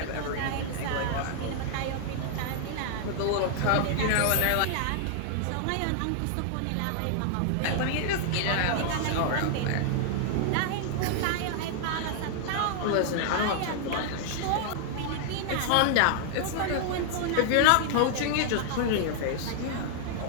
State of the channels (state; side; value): different; both; correlation -0.01